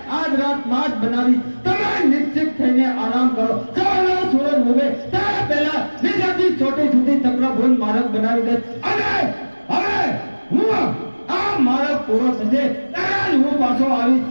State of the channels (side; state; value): both; inverted; correlation -1.00